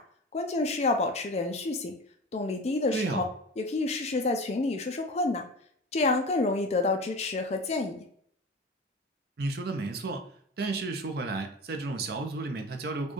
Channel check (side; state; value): both; normal; correlation 0.32